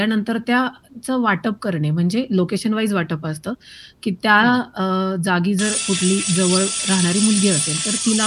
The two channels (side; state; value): both; identical; correlation 1.00